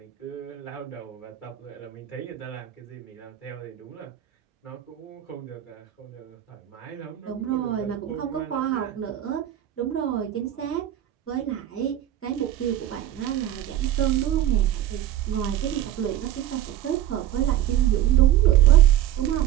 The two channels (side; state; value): left; quieter; 11.9 dB